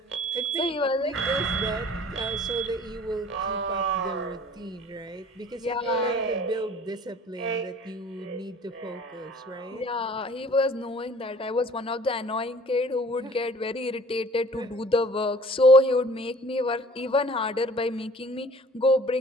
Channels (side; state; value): both; normal; correlation 0.50